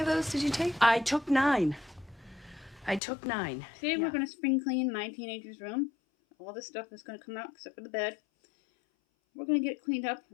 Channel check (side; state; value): right; drops out; at 3.0 s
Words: those did you take? I took 9. Today we're going to spring clean my teenager's room. All this stuff is going to come out except for the bed. We're going to get it cleaned up,